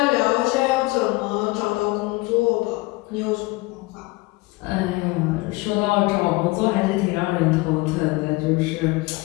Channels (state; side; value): quieter; right; 22.9 dB